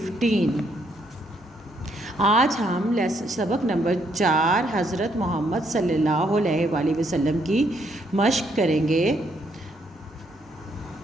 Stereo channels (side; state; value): both; normal; correlation 0.72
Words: آج ہم سبق نمبر 4 حضرت محمد صلی اللہ علیہ وآلہ وسلم کی مشق کریں گے۔